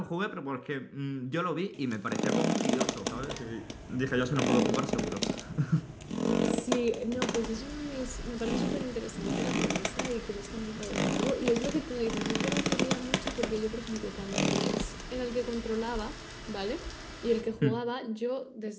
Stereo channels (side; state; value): both; identical; correlation 1.00